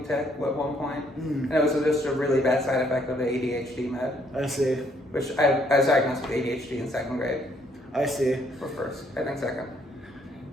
tic at one point. And it was just a really bad side effect of the ADHD med. I see. Which I was diagnosed with ADHD in 2nd grade. I see. Or 1st, I think 2nd.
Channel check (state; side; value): normal; both; correlation 0.68